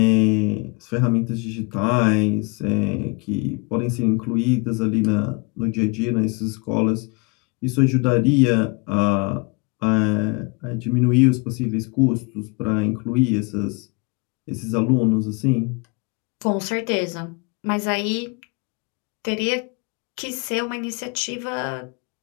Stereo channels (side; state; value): right; quieter; 30.2 dB